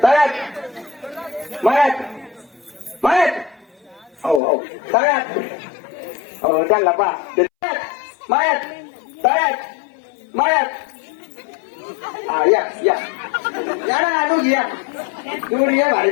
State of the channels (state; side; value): drops out; right; at 4.4 s